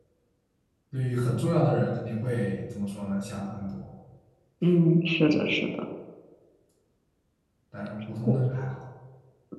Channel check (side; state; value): both; identical; correlation 1.00